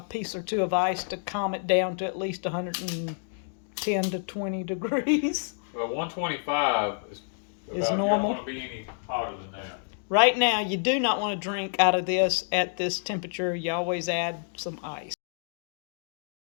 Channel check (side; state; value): right; silent; digital silence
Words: piece or two of ice to calm it down to at least 110 to 20 degrees. Well, 125 is normal. You don't want to be any hotter than that. Right now, you do not want to drink out of this at this temperature. You always add some ice.